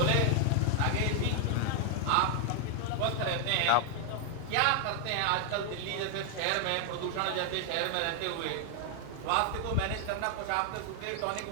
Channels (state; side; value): different; both; correlation 0.00